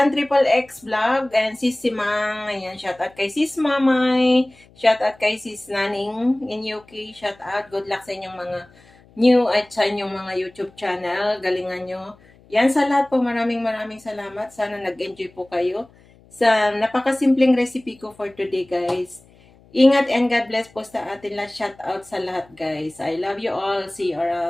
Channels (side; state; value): left; noise; hum, 28 dB below the sound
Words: Triple X Vlog and Sis Simang. Ayan, shout out kay Sis Mamay. Shout out kay Sis Naning in UK. Shout out. Good luck sa inyong mga new at sa inyong mga YouTube channel. Galingan nyo. Yan sa lahat po. Maraming salamat. Sana nag-enjoy po kayo sa napakasimpleng recipe ko for today guys. Ingat and God bless po sa atin lahat. Shout out sa lahat guys. I love you all. See you